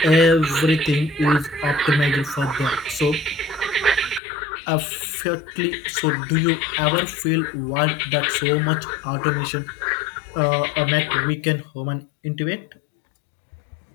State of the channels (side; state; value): right; drops out; at 4.2 s